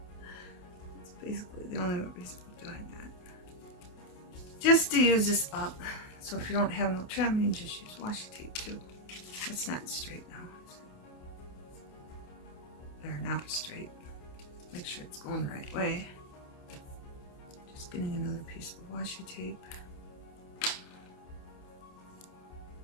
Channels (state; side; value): late; right; 28 ms